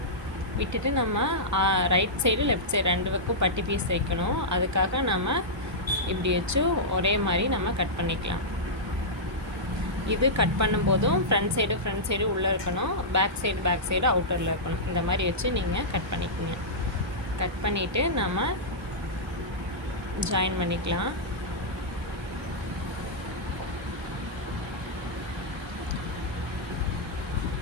விட்டுட்டு நம்ம ரைட் சைடு லெஃப்ட் சைடு 2 பக்கம் பட்டி பீஸ் வைக்கணும். அதுக்காக நம்ம இப்படி வச்சு ஒரே மாதிரி நம்ம கட் பண்ணிக்கலாம். இது கட் பண்ணும்போதும் ஃப்ரண்ட் சைடு உள்ளே இருக்கணும், பேக் சைடு அவுட்டரில் இருக்கணும். இந்த மாதிரி வச்சு நீங்கள் கட் பண்ணிக்கோங்க. கட் பண்ணிவிட்டு நம்ம ஜாயின் பண்ணிக்கலாம்.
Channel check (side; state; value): both; normal; correlation -0.12